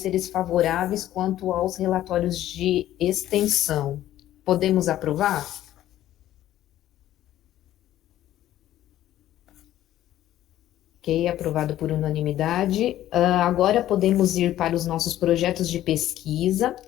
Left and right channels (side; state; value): right; quieter; 13.2 dB